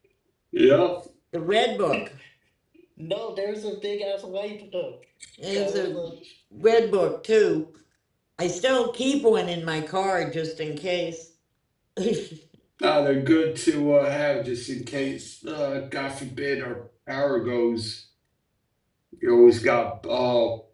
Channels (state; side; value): identical; both; correlation 1.00